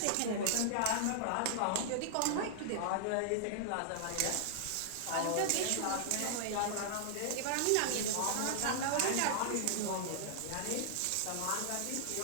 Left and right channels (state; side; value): different; both; correlation -0.01